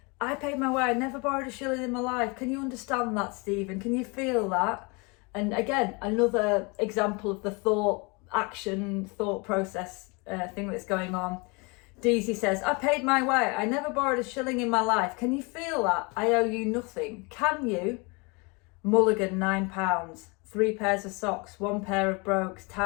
paid my way. I never borrowed a shilling in my life. Can you understand that, Stephen? Can you feel that? And again, another example of the thought process thing that's going on. Deasy says, I paid my way. I never borrowed a shilling in my life. Can you feel that? I owe you nothing. Can you? Mulligan, £9. 3 pairs of socks, 1 pair of brogues,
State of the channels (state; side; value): quieter; right; 29.5 dB